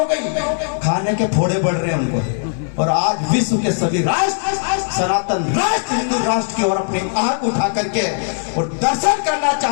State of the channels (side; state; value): right; silent; digital silence